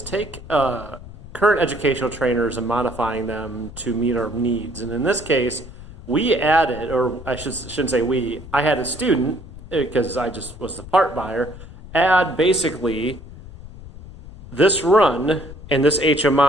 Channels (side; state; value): left; noise; rumble, 15 dB below the sound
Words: take current educational trainers and modifying them to meet our needs. And in this case, we added, or I shouldn't say we, I had a student, because I just was the part buyer, add basically this run and this